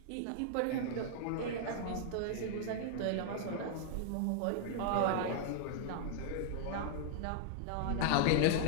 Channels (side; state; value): both; different; correlation -0.01